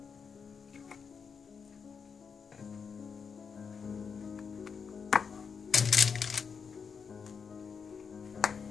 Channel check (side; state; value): right; quieter; 6.1 dB